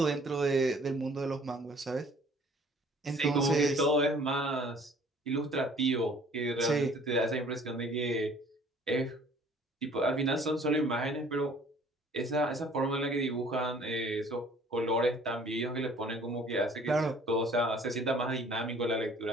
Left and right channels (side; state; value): both; normal; correlation 0.54